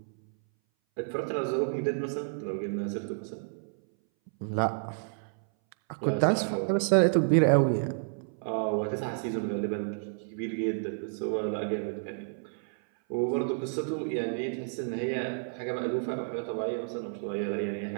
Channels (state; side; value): silent; left; 58 dB below the other